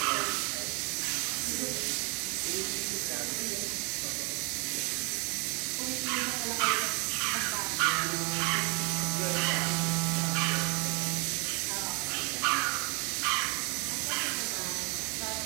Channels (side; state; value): left; quieter; 31.7 dB